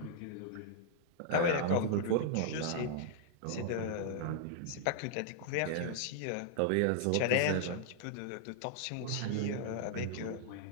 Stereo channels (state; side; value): different; both; correlation -0.01